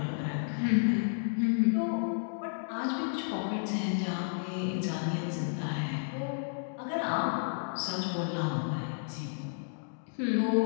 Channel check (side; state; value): right; silent; digital silence